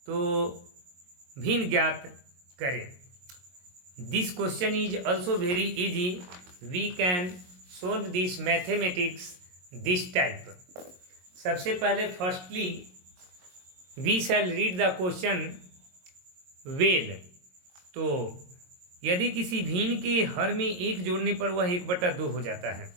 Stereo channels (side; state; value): left; late; 22 ms